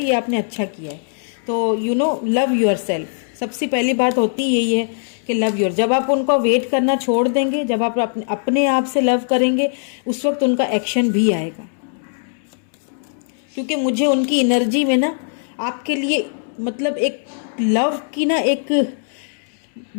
ये आपने अच्छा किया है। तो you know love your self, सबसे पहली बात होती यही है कि लव योर। जब आप उनको वेट करना छोड़ देंगे, जब आप अपने आप से लव करेंगे, उस वक्त उनका एक्शन भी आएगा। क्योंकि मुझे उनकी एनर्जी में ना आपके लिए मतलब एक लव की ना एक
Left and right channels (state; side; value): silent; right; 66 dB below the other